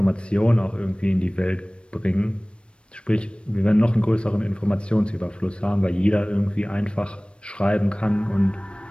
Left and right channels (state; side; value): late; right; 0.058 ms